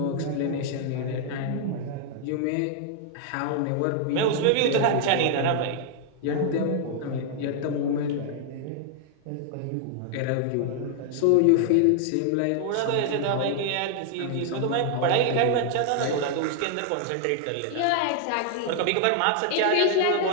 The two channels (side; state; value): both; different; correlation -0.01